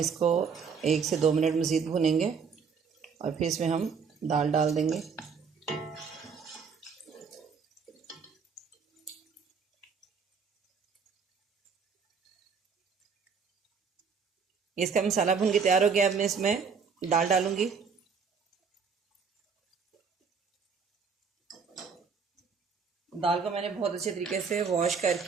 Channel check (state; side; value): quieter; left; 5.8 dB